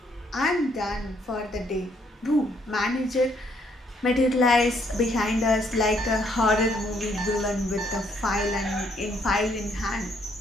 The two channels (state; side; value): normal; both; correlation 0.69